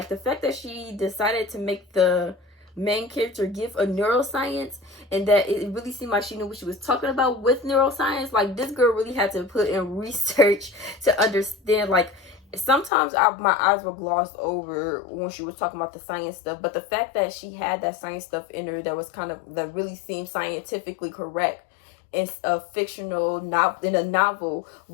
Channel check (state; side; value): drops out; right; at 12.9 s